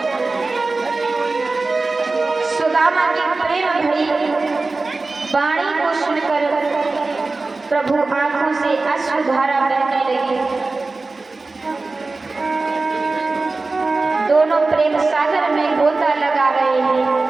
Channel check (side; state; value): left; quieter; 3.6 dB